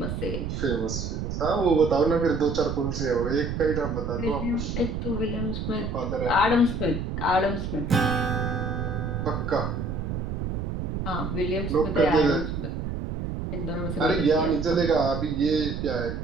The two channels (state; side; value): noise; right; rumble, 4 dB below the sound